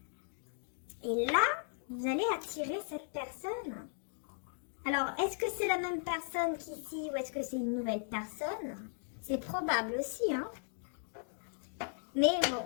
et là, vous allez attirer cette personne Alors, est-ce que c'est la même personne qu'ici ou est-ce que c'est une nouvelle personne? C'est probable aussi, hein. Mais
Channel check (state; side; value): silent; right; digital silence